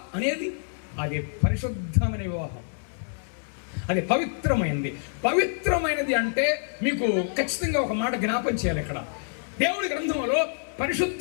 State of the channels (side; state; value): right; silent; digital silence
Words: అనేది అది పరిశుద్ధమైన వివాహం, అది పవిత్రమైనది. పవిత్రమైనది అంటే మీకు ఖచ్చితంగా ఒక మాట జ్ఞాపం చేయాలి. ఇక్కడ దేవుడి గ్రంథంలో